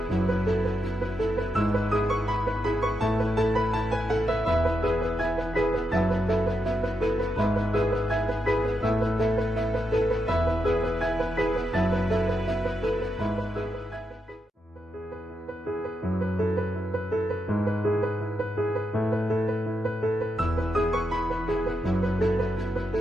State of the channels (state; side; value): normal; both; correlation 0.85